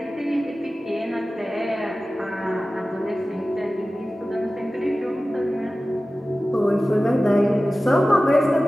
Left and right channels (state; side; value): normal; both; correlation 0.96